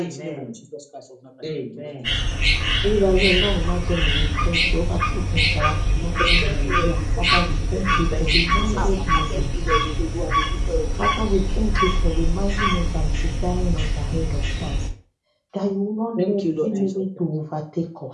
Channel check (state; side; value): identical; both; correlation 1.00